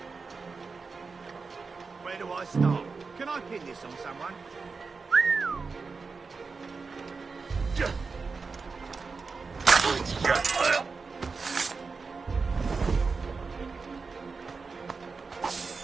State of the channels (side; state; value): left; quieter; 4.6 dB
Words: Where do I start? Can I pin this on someone?